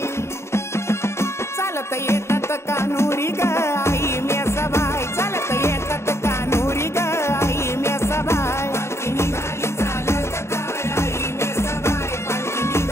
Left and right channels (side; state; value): right; late; 0.13 ms